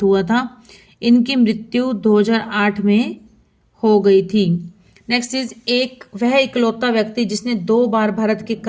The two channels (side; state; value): both; identical; correlation 1.00